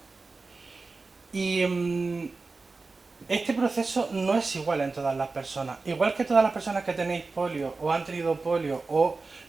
Y este proceso no es igual en todas las personas. Igual que todas las personas que tenéis polio o han tenido polio o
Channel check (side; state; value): left; quieter; 3.9 dB